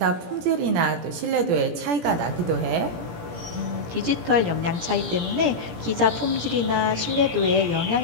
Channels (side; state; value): left; late; 17 ms